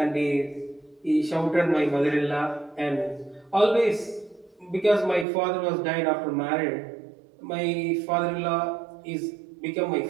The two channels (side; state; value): left; drops out; at 5.2 s